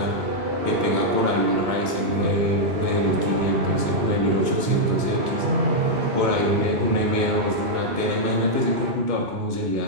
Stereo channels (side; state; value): left; late; 2.1 ms